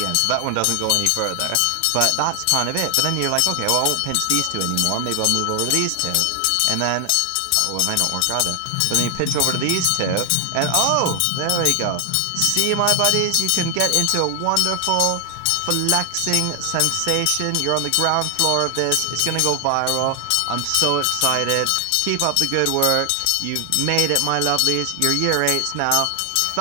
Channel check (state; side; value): different; both; correlation 0.00